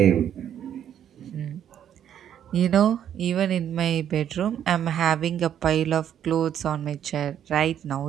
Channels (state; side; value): quieter; left; 9.8 dB